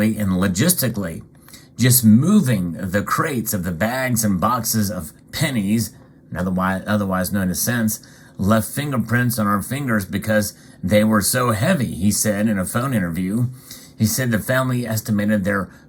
and logistically. Just moving the crates of the bags and boxes of pennies, otherwise known as cents, left fingerprints on our fingers because they were so heavy, he said in a phone interview. He said the family estimated their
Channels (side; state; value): both; identical; correlation 1.00